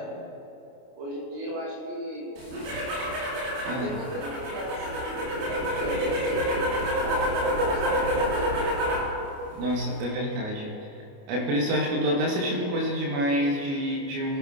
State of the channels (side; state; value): left; late; 29 ms